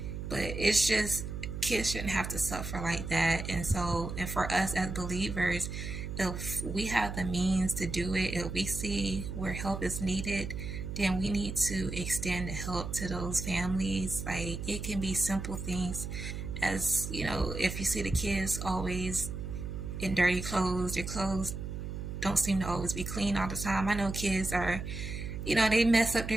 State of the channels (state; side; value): noise; right; hum, 6 dB below the sound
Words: but it's just kids shouldn't have to suffer like that. And so, and for us as believers, if we have the means to do it, if we see where help is needed, then we need to extend the help to those families. Like, it can be simple things as, if you see the kids always in dirty clothes, their clothes don't seem to always be clean all the time. I know kids are, they mess up their